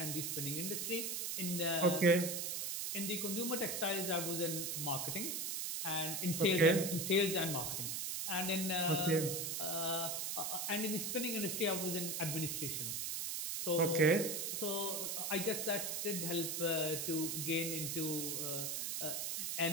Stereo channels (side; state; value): right; noise; hiss, 1 dB below the sound